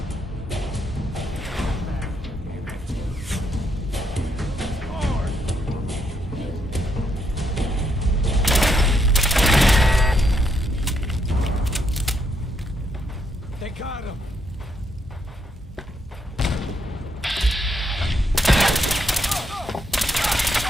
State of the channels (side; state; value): both; normal; correlation 0.76